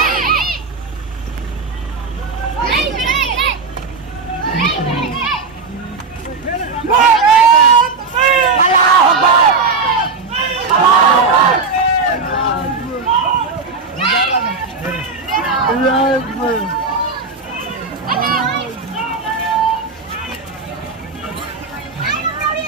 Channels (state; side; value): quieter; left; 4.4 dB